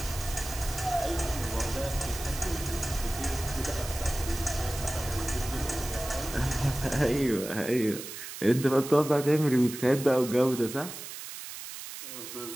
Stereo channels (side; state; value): right; noise; hiss, 10 dB below the sound